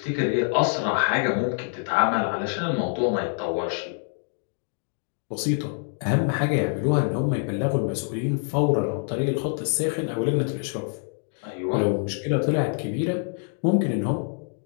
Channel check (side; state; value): right; silent; 58 dB below the other